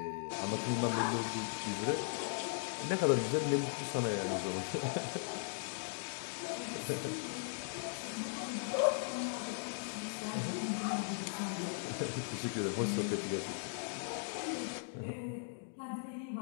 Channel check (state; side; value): silent; right; digital silence